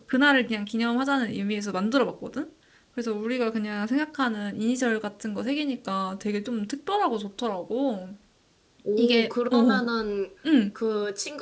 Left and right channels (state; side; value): identical; both; correlation 1.00